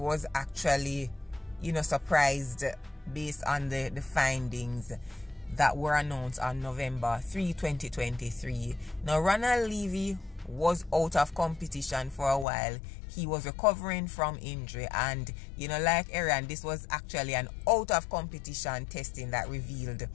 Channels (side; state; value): right; drops out; at 12.5 s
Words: actually, you know, surprised based on the findings that were announced on November 3, 2023. Now, Ronald Levy was out of competition for a while. He was recovering from injury, and, you know, like Erriyon, this was actually an out of competition testing that revealed